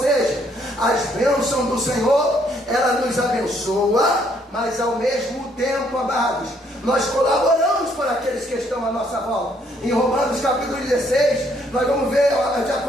as bênçãos do Senhor, ela nos abençoa, mas ao mesmo tempo, amados, nós colaboramos para aqueles que estão à nossa volta. Em Romanos capítulo 16, nós vamos ver a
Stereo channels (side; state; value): both; normal; correlation 0.68